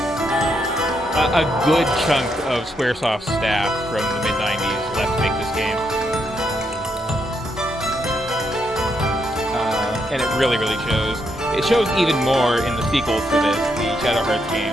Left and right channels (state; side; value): normal; both; correlation 0.78